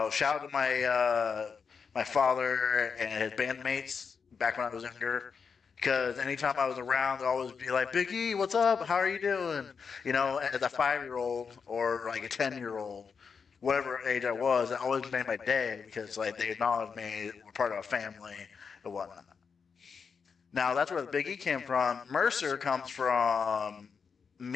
out to my father and his bandmates back when I was younger. Because anytime I was around, they'd always be like, Big E, what's up? How are you doing? As a 5-year-old or like a 10-year-old, whatever age I was, it always made my day because like they acknowledged me, we're part of a family and whatnot. Now that's where the Big E came from. Mercer comes from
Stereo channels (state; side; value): quieter; right; 5.8 dB